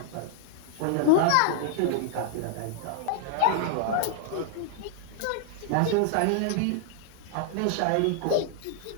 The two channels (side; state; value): both; different; correlation -0.01